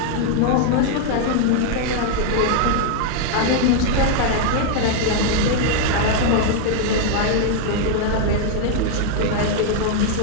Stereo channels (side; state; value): both; different; correlation 0.00